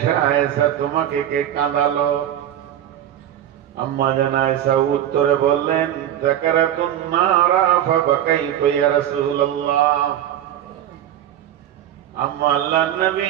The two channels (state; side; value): quieter; left; 11.2 dB